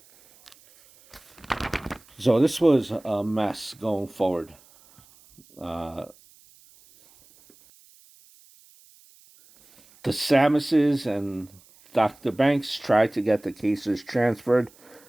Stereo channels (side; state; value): right; noise; hiss, 28 dB below the sound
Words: So this was a mess going forward. The Samuses and Dr. Banks tried to get the cases transferred